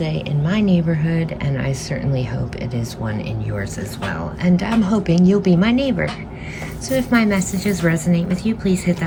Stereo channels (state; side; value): identical; both; correlation 1.00